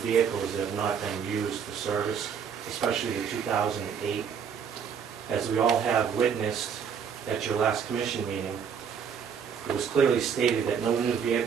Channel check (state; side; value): quieter; left; 7.2 dB